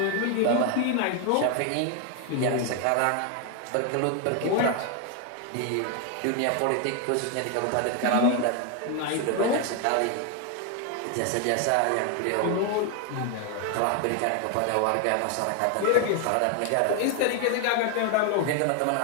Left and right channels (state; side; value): different; both; correlation 0.01